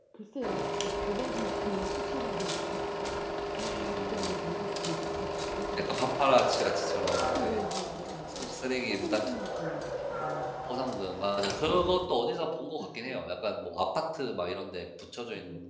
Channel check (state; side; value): identical; both; correlation 1.00